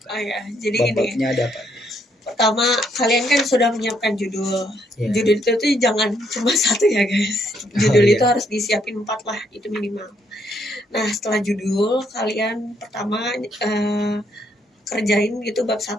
kan. Oh ya, jadi bab-babnya ada apa? Pertama kalian kan sudah menyiapkan judul. Judul itu tuh jangan cuma 1 ya guys. Judul itu harus disiapin 4 lah, itu minimal. Nah setelah judul kalian pertama kerjain gitu bab 1.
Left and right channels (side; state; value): both; normal; correlation 0.72